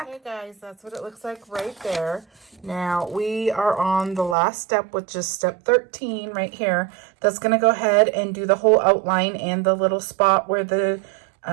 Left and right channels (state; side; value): drops out; left; at 4.4 s